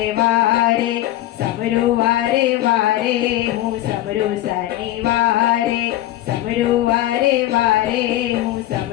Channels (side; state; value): right; quieter; 14.7 dB